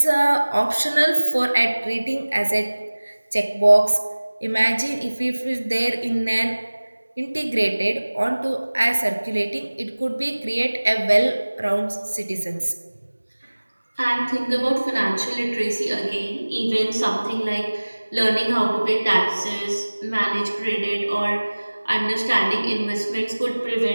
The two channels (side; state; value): both; inverted; correlation -1.00